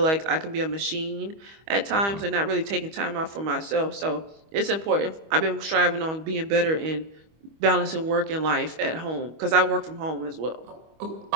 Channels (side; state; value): left; late; 25 ms